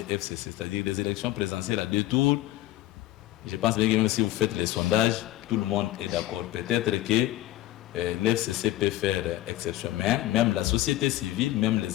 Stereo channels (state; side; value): quieter; right; 15.5 dB